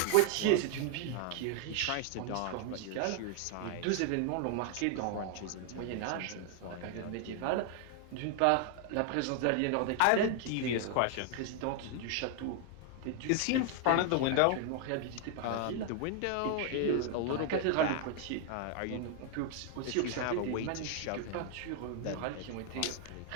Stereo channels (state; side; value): different; both; correlation 0.00